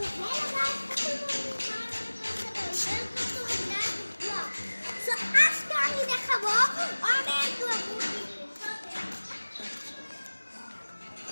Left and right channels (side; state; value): both; inverted; correlation -1.00